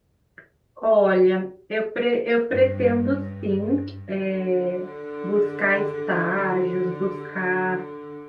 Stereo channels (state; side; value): identical; both; correlation 1.00